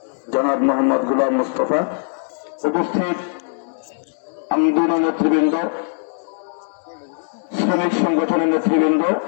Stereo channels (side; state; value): right; silent; 64 dB below the other